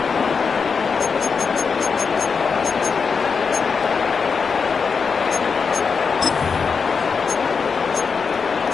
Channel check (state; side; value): quieter; right; 5.5 dB